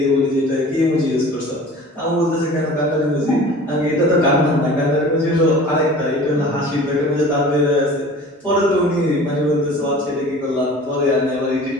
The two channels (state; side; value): normal; both; correlation 0.42